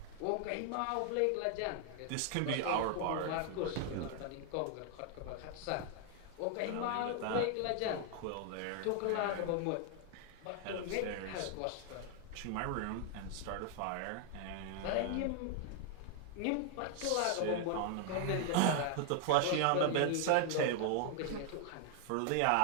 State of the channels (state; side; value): different; both; correlation 0.00